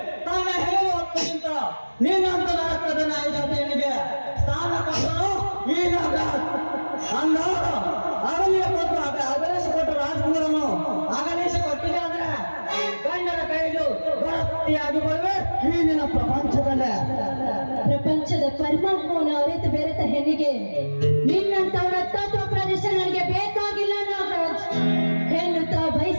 ತನ್ನ ಹೇಳುವ ಹೊತ್ತಿಗಿಂತ ನೀನಂತ ರಕ್ತದ ನಾಯಕನಿಗೆ ಸ್ಥಾನ ಕೊಟ್ಟರು ಈ ನಾಗರಾಜ್. ಅಂದಾಗ ಅಗಲಿಯ ಕೊಟ್ಟು ಅಗಲಿಸಿಕೊಟ್ಟು ರಾಜಕುಮಾರನು ಅಗಲಿಸಿಕೊಟ್ಟಿದೆ ಅಂದ್ರೆ ಗಂಡನ ಕೈಲು ಭರ್ತಿಯಾಗಿ ಬರುವೆ ಈ ನಿನ್ನ ಪ್ರಪಂಚದಲ್ಲೇ. ಪ್ರಪಂಚದ ಪರಮಾತ್ಮವನ್ನು ಅರಿತು ಬೆರೆತ ಹೆಣ್ಣಿಗೆ ನಿನ್ನಂತವರ ತತ್ವ ಪ್ರದೇಶ ನನಗೆ ಬೇಕಾಗಿಲ್ಲ ನಾಗರಾಜ್. ಹೆಣ್ಣು ತಾ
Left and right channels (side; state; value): both; inverted; correlation -1.00